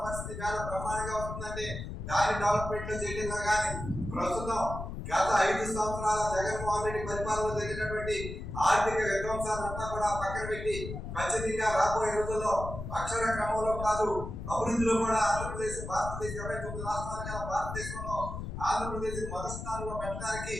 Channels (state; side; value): noise; left; rumble, 7 dB below the sound